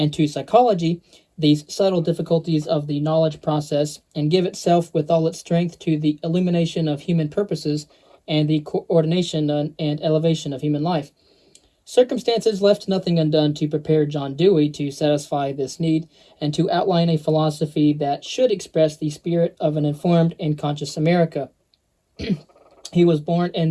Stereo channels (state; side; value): identical; both; correlation 1.00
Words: to psychology these subtle difficulties of the knowledge process, and give itself with all its strength to the illumination of human purposes and the coordination and elevation of human life? Circumstances left nothing undone to prepare John Dewey to satisfy this need and to outline a philosophy that should express the spirit of an informed and conscious America. He was born